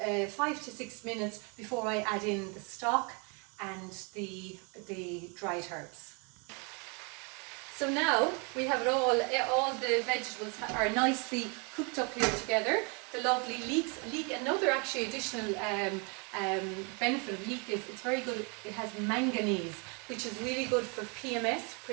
to 6 minutes before I add in the stock and the dried herbs. So now we have it all the vegetables are nicely cooked up here together. The lovely leek, another actually additional benefit of leek is it's very good. It has manganese, which is really good for PMS,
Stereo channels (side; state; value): left; quieter; 33.7 dB